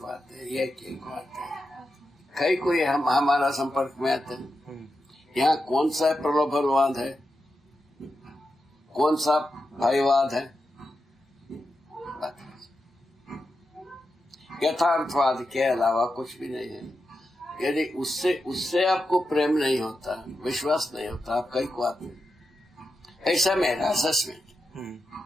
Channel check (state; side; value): normal; both; correlation 0.88